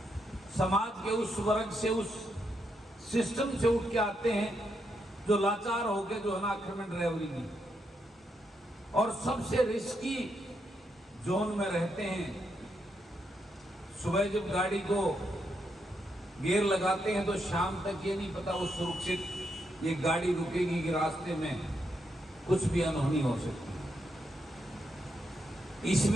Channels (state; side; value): normal; both; correlation 0.81